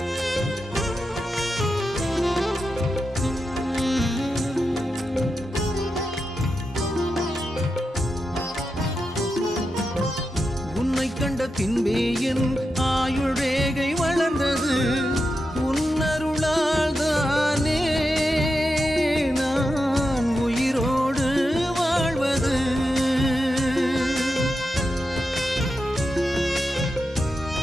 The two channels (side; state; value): both; normal; correlation 0.88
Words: கண்ட பின்பே என் ஆயுள் ரேகை வளர்ந்தது, உன்னருளால் தானே நான் உயிரோடு வாழ்வது.